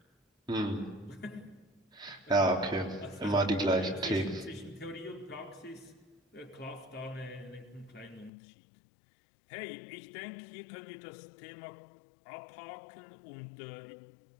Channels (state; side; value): drops out; right; at 8.3 s